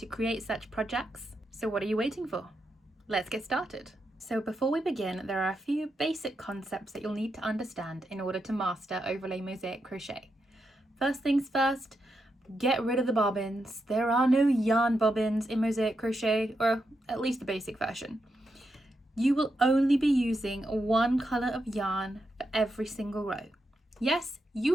create such projects. So what are you waiting for? Let's get started. So before we begin, there are a few basic concepts that you'll need to understand in order to master Overlay Mosaic Crochet. First things first, get rid of the bobbins. There are no yarn bobbins in Mosaic Crochet, or at least the basic version. You will only be using one colour of yarn for every single row. Yes,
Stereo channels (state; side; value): normal; both; correlation 0.84